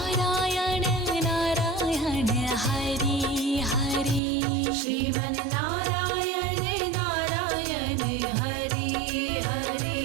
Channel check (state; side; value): drops out; left; at 4.2 s